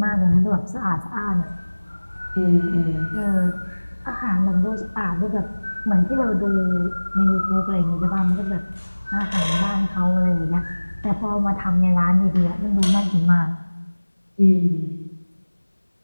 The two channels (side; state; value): both; inverted; correlation -1.00